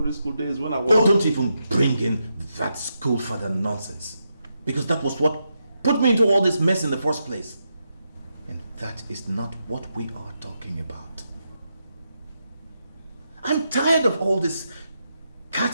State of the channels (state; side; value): inverted; both; correlation -0.84